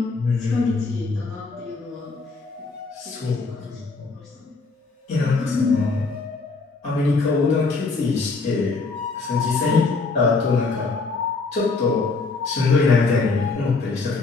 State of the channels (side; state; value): right; quieter; 4.0 dB